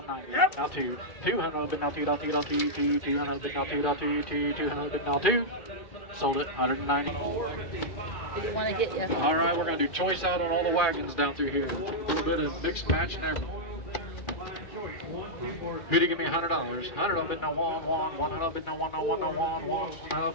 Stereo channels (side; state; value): right; late; 2.4 ms